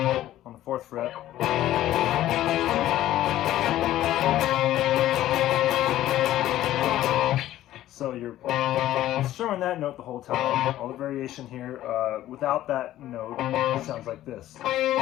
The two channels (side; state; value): right; quieter; 13.8 dB